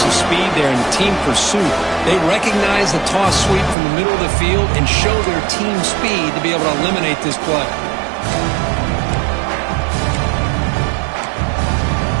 speed there and the team pursuit? They recognize the toss sweep from the middle of the field and show their team speed to be able to eliminate this play.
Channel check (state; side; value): drops out; left; at 3.8 s